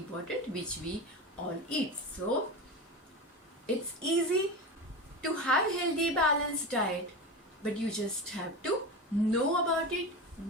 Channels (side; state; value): both; normal; correlation 0.24